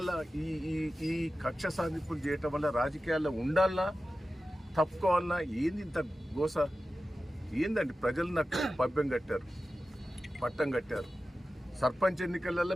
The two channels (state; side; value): normal; both; correlation 0.94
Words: ఈ కక్ష సాధింపులు చేయటం వల్ల రాజకీయాల్లో ఉండాలన్నా తప్పుకోవాలన్నా ఏంది ఇంత గోస ఏందండి? ప్రజలు నాకు పట్టం కట్టారు. సర్పంచ్ ఎన్నికలలో